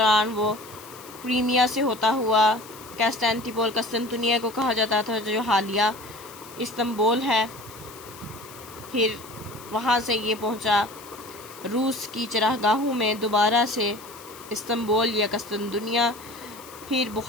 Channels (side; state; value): left; noise; hiss, 18 dB below the sound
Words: وہ کرائمیا سے ہوتا ہوا کانسٹینٹیپول، قسطنطنیہ کو کہا جاتا تھا جو حالیہ استنبول ہے، پھر وہاں سے یہ پہنچا روس کی چراگاہوں میں دوبارہ سے استنبول یا قسطنطنیہ، پھر